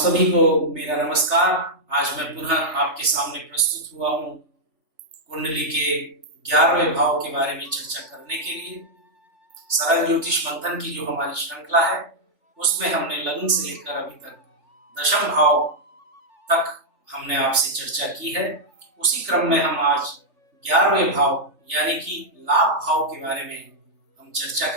को मेरा नमस्कार। आज मैं पुनः आपके सामने प्रस्तुत हुआ हूँ कुंडली के 11वें भाव के बारे में चर्चा करने के लिए। सरल ज्योतिष मंथन की जो हमारी श्रृंखला है उसमें हमने लग्न से लेकर अभी तक दशम भाव तक हमने आपसे चर्चा की है। उसी क्रम में हम आज 11वें भाव यानी कि लाभ भाव के बारे में हम चर्चा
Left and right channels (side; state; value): left; late; 3.3 ms